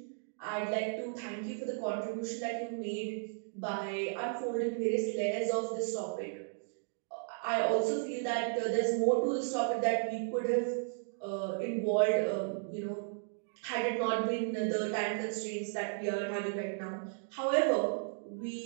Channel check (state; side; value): silent; left; digital silence